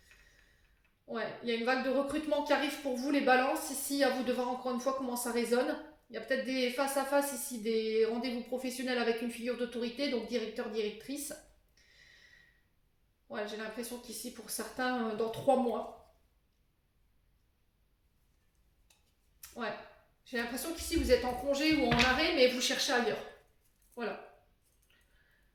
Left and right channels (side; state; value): both; identical; correlation 1.00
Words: Ouais, il y a une vague de recrutement qui arrive pour vous, les balances. Ici, à vous de voir encore une fois comment ça résonne. Il y a peut-être des face-à-face ici, des rendez-vous professionnels avec une figure d'autorité, donc directeur, directrice. Ouais, j'ai l'impression qu'ici, pour certains, dans 3 mois. Ouais. J'ai l'impression qu'ici, vous êtes en congé ou en arrêt, mais vous cherchez ailleurs. Voilà.